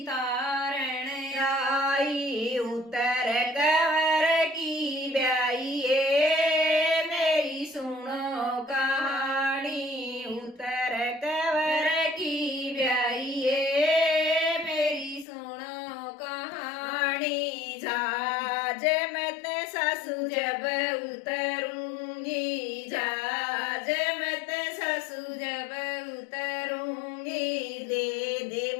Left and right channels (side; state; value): right; drops out; at 15.2 s